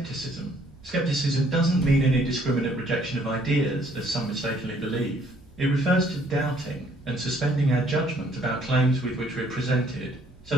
Skepticism doesn't mean an indiscriminate rejection of ideas, as some mistakenly believe. It refers to doubting and suspending our judgment about claims with which we're presented, so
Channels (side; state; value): right; noise; hum, 26 dB below the sound